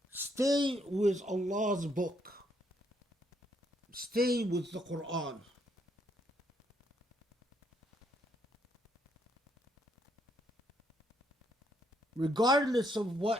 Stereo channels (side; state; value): both; normal; correlation 0.73